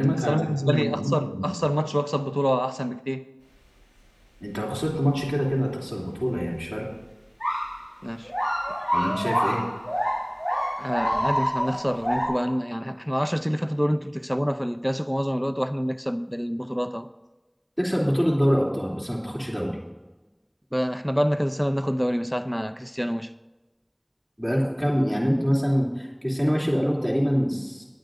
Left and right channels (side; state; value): both; identical; correlation 1.00